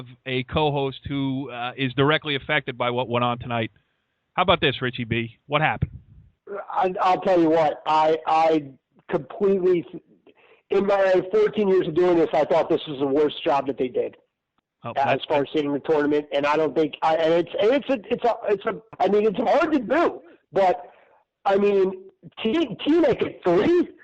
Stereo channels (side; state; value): both; identical; correlation 1.00